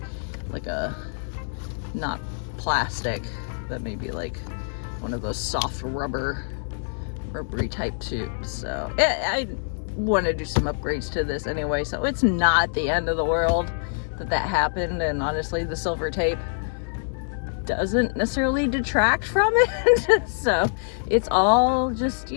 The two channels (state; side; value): silent; right; digital silence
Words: like a, not plastic, but maybe like one of those soft rubbery type tubes. So I want to do some upgrades to this anyway, so it's not the end of the world that happened. And honestly, the silver tape doesn't necessarily detract from it. So it's all just,